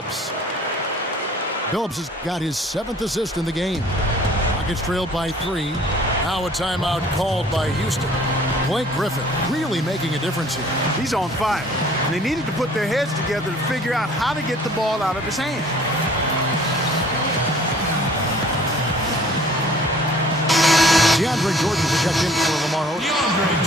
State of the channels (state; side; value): normal; both; correlation 0.52